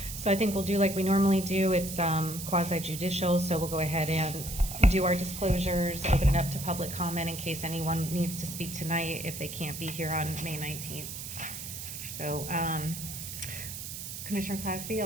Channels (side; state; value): right; noise; hiss, 8 dB below the sound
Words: so I think we'll do like we normally do. It's quasi-judicial, so we'll go ahead and do our disclosures, open it up to public comment in case anyone needs to speak tonight if they can't be here on May 19th. So, Commissioner Clasby,